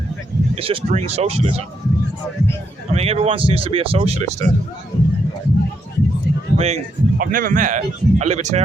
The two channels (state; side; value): normal; both; correlation 0.78